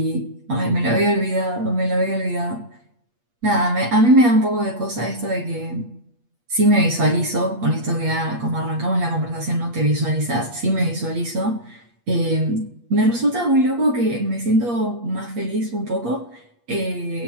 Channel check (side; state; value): left; late; 8.4 ms